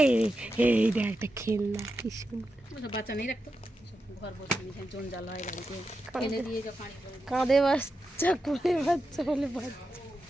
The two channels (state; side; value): normal; both; correlation 0.89